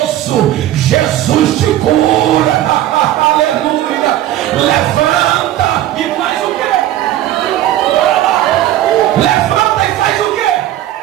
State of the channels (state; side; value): quieter; left; 13.5 dB